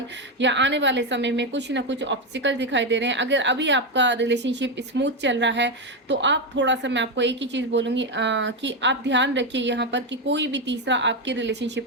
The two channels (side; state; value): both; normal; correlation 0.08